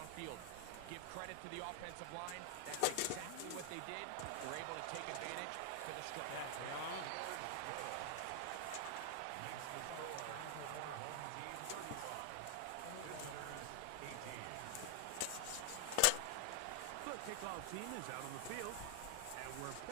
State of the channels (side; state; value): both; different; correlation 0.00